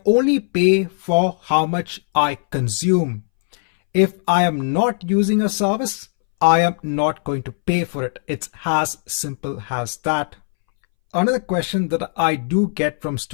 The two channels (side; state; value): right; silent; 64 dB below the other